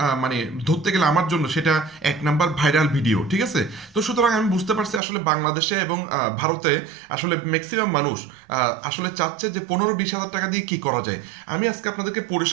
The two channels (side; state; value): left; drops out; at 5.0 s